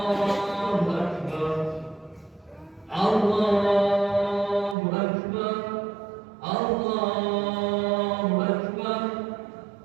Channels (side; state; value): left; drops out; at 4.8 s